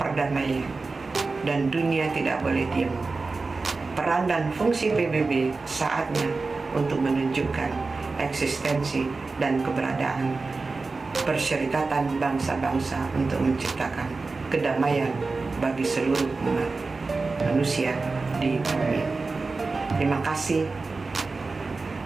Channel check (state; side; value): quieter; left; 3.9 dB